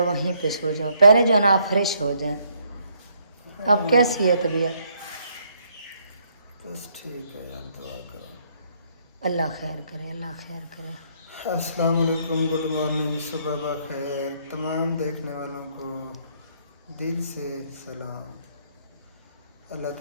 वहीं पे सो जाओ, पहले जो है ना आप फ्रेश हो जाएं। अब कैसी है तबीयत? बस ठीक है यार, दुआ करो। अल्लाह खैर करे, अल्लाह खैर करे। अस्सलाम वालेकुम, गुड मॉर्निंग, सुबह बखैर। तमाम देखने वालों को दिल से सलाम। अल्लाह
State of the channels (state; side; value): inverted; both; correlation -0.69